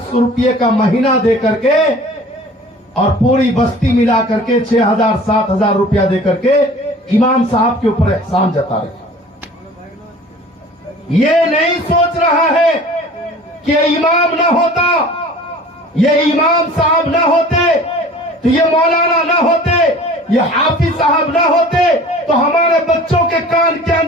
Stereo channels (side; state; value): both; normal; correlation 0.45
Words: रुपये का महीना दे करके और पूरी बस्ती मिला करके 6,000 7,000 रुपया दे करके इमाम साहब के ऊपर एहसान जता रहे। ये नहीं सोच रहा है कि इमाम ना होता, ये इमाम साहब ना होते तो ये मौलाना ना होते, ये हाफिज साहब ना होते तो हमारे बच्चों के कान के